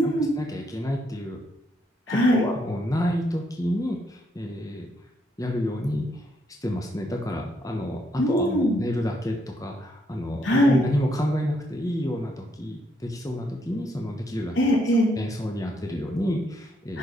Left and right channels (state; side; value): normal; both; correlation 0.74